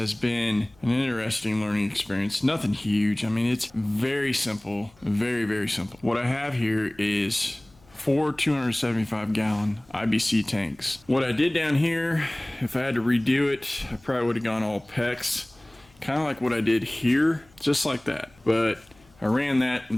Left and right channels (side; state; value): left; noise; hum, 29 dB below the sound